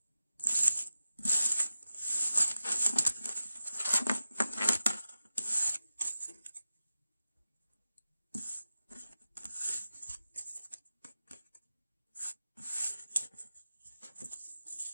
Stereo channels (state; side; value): inverted; both; correlation -0.93